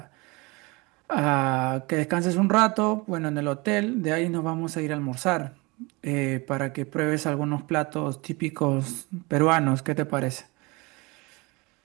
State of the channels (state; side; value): quieter; left; 25.7 dB